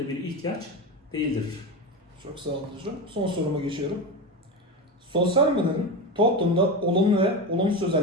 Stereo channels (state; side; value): normal; both; correlation 0.20